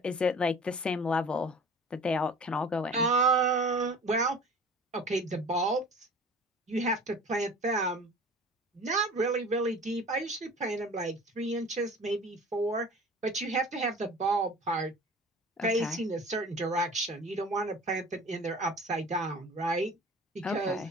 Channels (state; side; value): normal; both; correlation 0.42